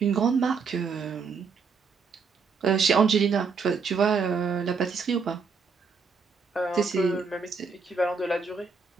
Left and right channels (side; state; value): left; quieter; 5.2 dB